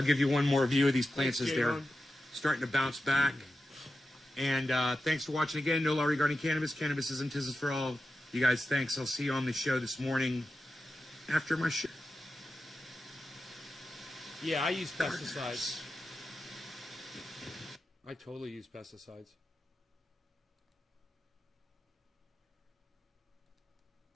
give you one more view of these plants as they're starting to bounce back. And thanks for watching again. No Law Regarding Cannabis. Cannabis isn't business for all. You guys, thanks. I'll see you on the show this morning. after my shit. Yeah, I use pesticides. I totally use pesticides.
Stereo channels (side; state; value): both; normal; correlation 0.91